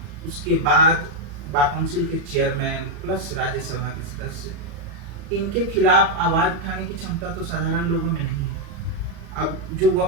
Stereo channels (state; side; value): late; left; 35 ms